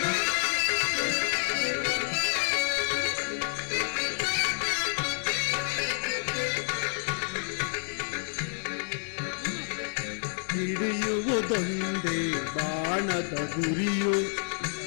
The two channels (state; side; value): silent; right; 59 dB below the other